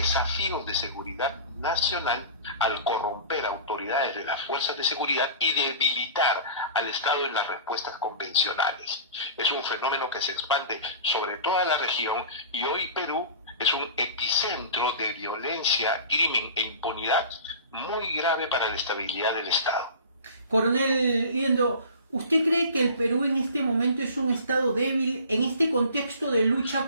de seguridad nacional al corromper autoridades de las fuerzas de seguridad y debilitar al Estado en las respuestas convencionales. Es un fenómeno que se expande sobre toda la región, y hoy Perú es un epicentro de violencia, crimen e impunidad muy grave para la estabilidad del Estado. Coronel Liendo, ¿usted cree que el Perú en este momento es un estado débil en este contexto de lucha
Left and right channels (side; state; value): both; inverted; correlation -0.39